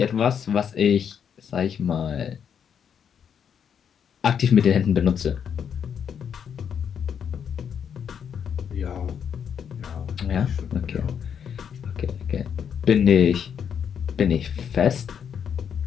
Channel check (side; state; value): right; quieter; 7.8 dB